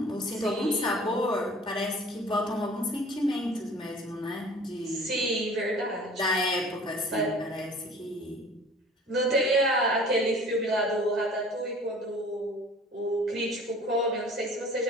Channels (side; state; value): both; normal; correlation 0.47